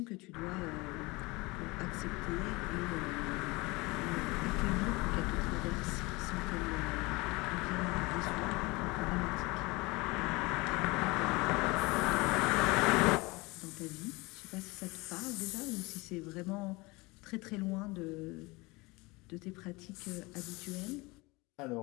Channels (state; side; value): quieter; right; 24.1 dB